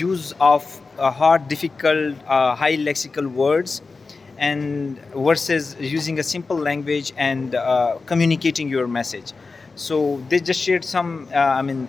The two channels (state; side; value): quieter; right; 4.1 dB